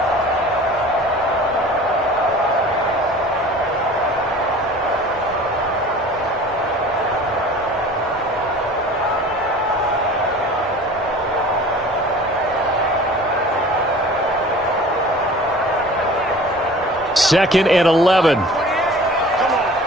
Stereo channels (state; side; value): normal; both; correlation 0.43